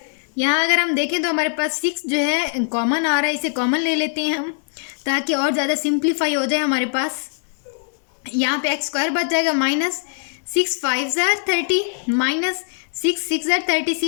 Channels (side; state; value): right; silent; 65 dB below the other